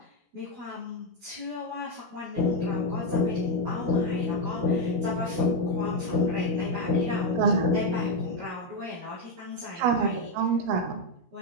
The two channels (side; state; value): left; late; 16 ms